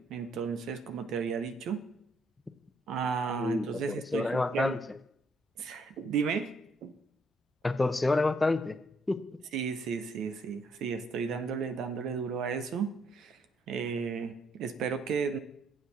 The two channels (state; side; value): normal; both; correlation 0.71